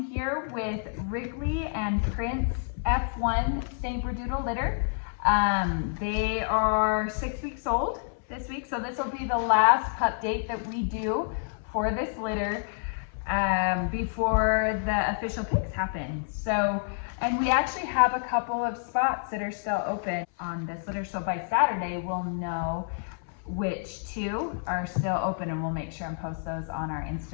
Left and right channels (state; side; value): silent; right; 58 dB below the other